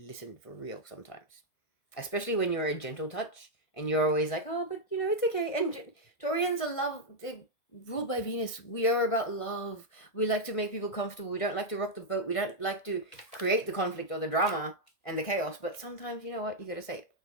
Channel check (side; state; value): right; late; 1.6 ms